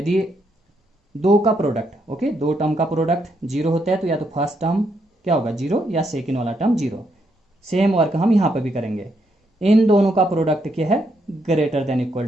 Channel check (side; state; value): both; normal; correlation 0.77